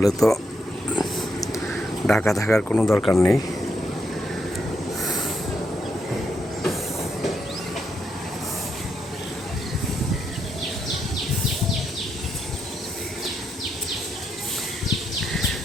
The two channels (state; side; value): normal; both; correlation 0.80